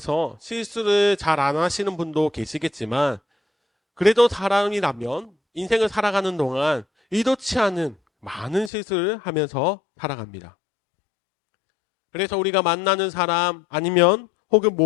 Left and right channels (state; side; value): drops out; right; at 8.7 s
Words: 실수를 잘 안 하시는 분도 계시겠지만 그래도 사람이라면 인생을 살아가는 동안 의도치 않은 많은 실수를 하면서 살아갑니다. 그래서 우리가 만나는 사람 아니면 혹은